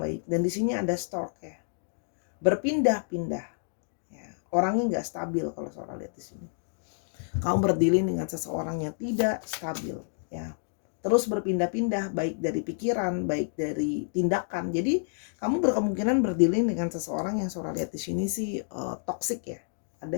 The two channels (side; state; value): right; silent; digital silence